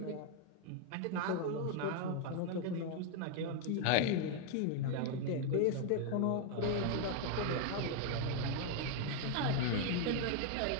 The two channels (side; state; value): both; different; correlation 0.00